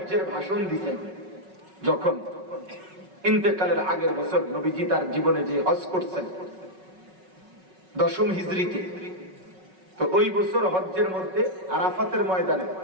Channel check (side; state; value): left; late; 5.4 ms